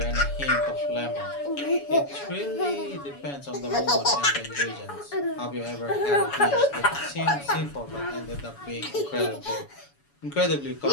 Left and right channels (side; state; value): right; late; 7.1 ms